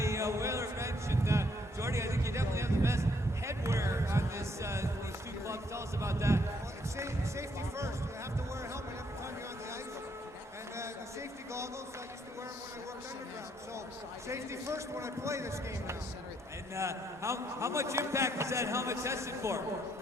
Whaler bench, and Jordy, I think you definitely have the best headwear on this these two clubs. Tell us about that. Well, it's safety first. You have to wear a helmet every time you're on the ice. And the safety goggles, I used to wear them when I worked underground. So safety first when I play this game now. And how much impact is that helmet tested for? Well,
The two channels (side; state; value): both; normal; correlation 0.70